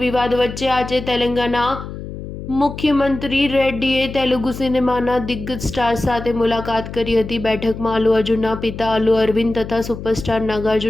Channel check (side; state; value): left; noise; hum, 10 dB below the sound